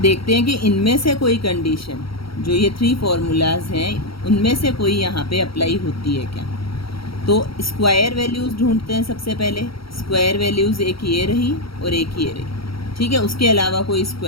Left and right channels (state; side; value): late; right; 0.75 ms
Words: देखते हैं कि इनमें से कोई कंडीशन, जो ये 3 फार्मूलाज हैं, उनमें से कोई यहाँ पे अप्लाई होती है क्या। तो स्क्वायर वैल्यूज़ ढूंढते हैं सबसे पहले। स्क्वायर वैल्यूज़ एक ये रही और एक ये रही, ठीक है। उसके अलावा कोई